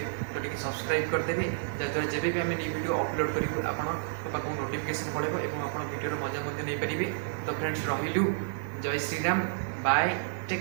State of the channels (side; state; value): left; silent; 58 dB below the other